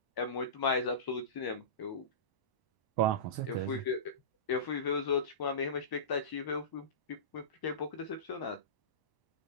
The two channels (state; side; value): late; right; 1.0 ms